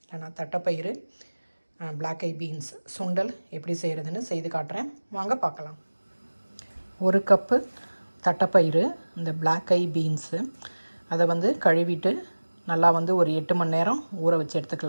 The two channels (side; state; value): both; inverted; correlation -1.00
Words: இல்லைனா தட்டைப்பயிறு பிளாக் ஐ பீன்ஸ் சுண்டல் எப்படி செய்கிறதுன்னு செய்து காட்டுறேன். வாங்க பார்க்கலாம். 1 கப்பு தட்டைப்பயிறு, இந்த பிளாக் ஐ பீன்ஸு அதை கழுவிட்டு நல்லா ஒரு 8 மணி நேரம் ஊற வச்சு